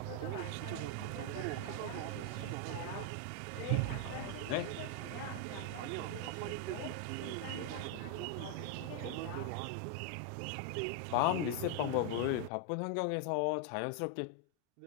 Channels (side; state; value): both; different; correlation 0.00